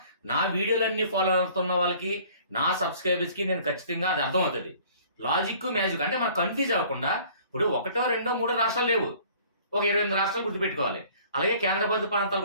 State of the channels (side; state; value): both; inverted; correlation -0.53